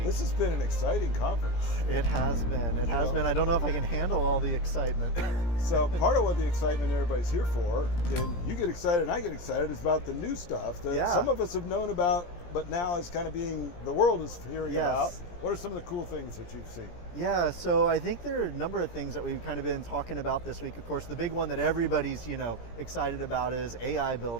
This has been an exciting conference. It has been. It has been. I don't know if I can handle all the excitement. So part of what the excitement everybody's here for, and you get excited and I get excited, is about the new stuff that some of us have known about, but now it's kind of being, the world is hearing about. What are some of the cool things that you've seen? Yeah, so I think there are a number of things that we've kind of been talking about this week. Of course, the big one that everybody's, excited about is AI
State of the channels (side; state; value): right; late; 17 ms